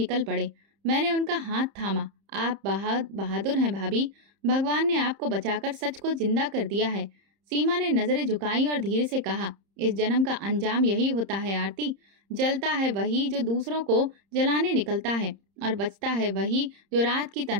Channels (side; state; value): left; late; 30 ms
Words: पड़े। मैंने उनका हाथ थामा। आप बहादुर हैं भाभी। भगवान ने आपको बचाकर सच को जिंदा कर दिया है। सीमा ने नजरें झुकाई और धीरे से कहा, इस जन्म का अंजाम यही होता है आरती। जलता है वही जो दूसरों को जलाने निकलता है, और बचता है वही जो रात की